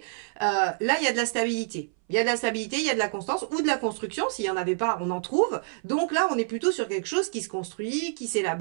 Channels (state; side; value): silent; left; 59 dB below the other